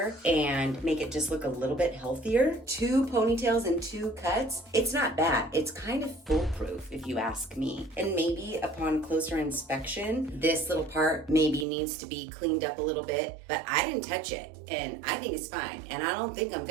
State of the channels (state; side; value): drops out; left; at 11.7 s